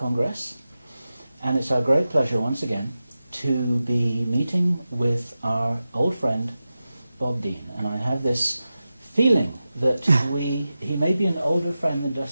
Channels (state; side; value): inverted; both; correlation -0.93